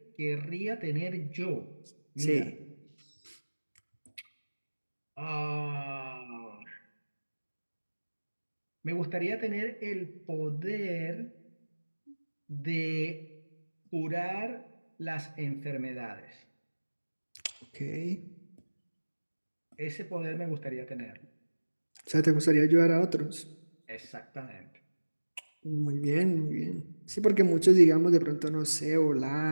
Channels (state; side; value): inverted; both; correlation -1.00